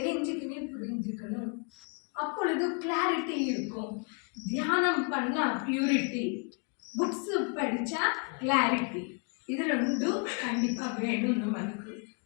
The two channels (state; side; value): quieter; right; 36.2 dB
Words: புரிஞ்சுக்கணும். அப்பொழுது கிளாரிட்டி இருக்கும். தியானம் பண்ணா பியூரிட்டி, புக்ஸ் படிச்சா கிளாரிட்டி, இது ரெண்டும் கண்டிப்பா வேணும் நம்மளுக்கு.